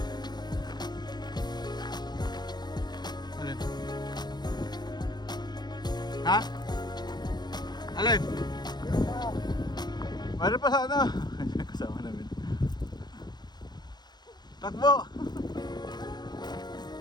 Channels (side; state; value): right; late; 0.20 ms